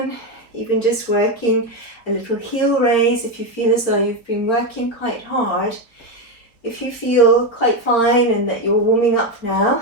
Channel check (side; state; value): right; late; 4.6 ms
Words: even just working a little heel raise if you feel as though you've been working quite hard. If you feel quite fine and that you're warming up now,